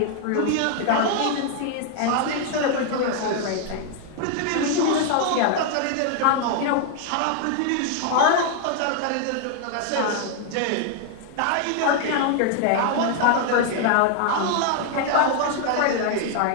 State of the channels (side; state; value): both; different; correlation 0.00